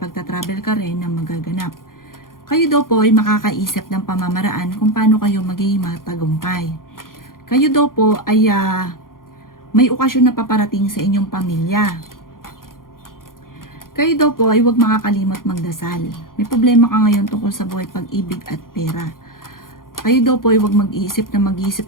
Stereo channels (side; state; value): right; late; 0.91 ms